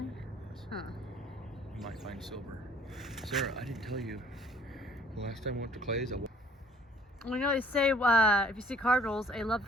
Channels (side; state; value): both; normal; correlation 0.57